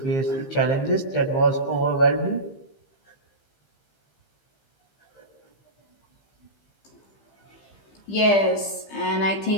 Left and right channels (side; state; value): right; late; 15 ms